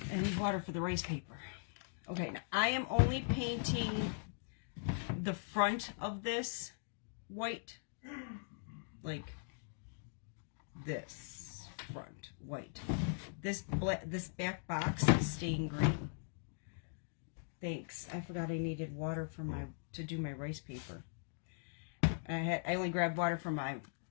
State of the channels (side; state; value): right; silent; digital silence